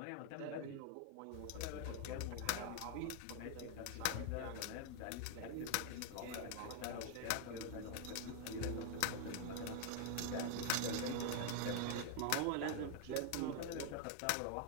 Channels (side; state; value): both; different; correlation 0.00